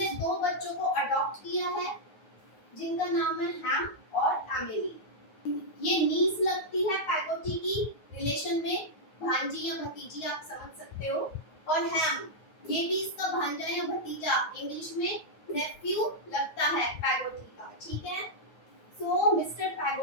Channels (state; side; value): late; right; 9.4 ms